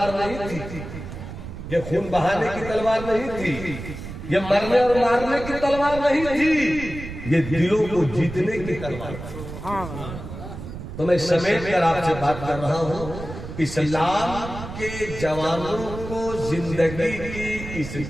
नहीं थी, ये खून बहाने की तलवार नहीं थी, ये मरने और मारने की तलवार नहीं थी, ये दिलों को जीतने की तलवार थी। तो मैं समेट कर आपसे बात कर रहा हूँ। इस्लाम के जवानों को जिंदगी की इस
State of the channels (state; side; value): noise; right; rumble, 10 dB below the sound